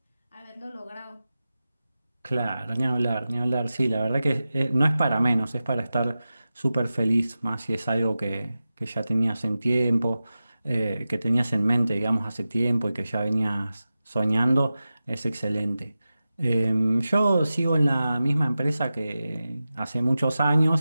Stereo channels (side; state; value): both; inverted; correlation -0.94